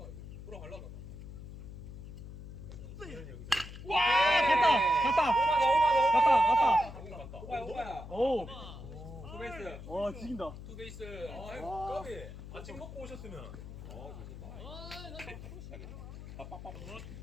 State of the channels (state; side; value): noise; left; hum, 12 dB below the sound